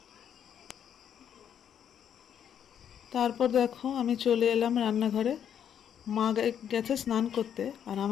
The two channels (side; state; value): right; quieter; 9.0 dB